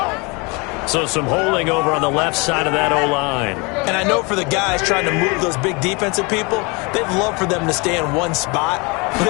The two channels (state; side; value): quieter; right; 28.8 dB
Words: So some holding over on the left side of that O-line. And I know for the guys trying to move those big defensive people, they'd love for them to stay in one spot. But